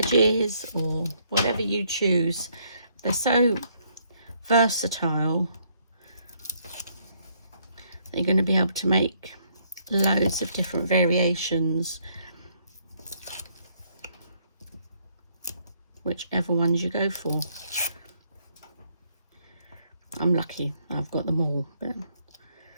or whatever you choose. They're so versatile. You're going to be able to make loads of different variations, whichever ones you go for. I'm lucky I've got them all, but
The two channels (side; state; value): both; inverted; correlation -0.70